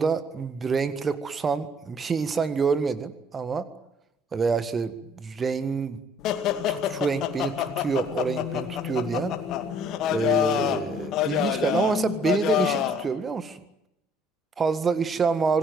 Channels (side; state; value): both; normal; correlation 0.60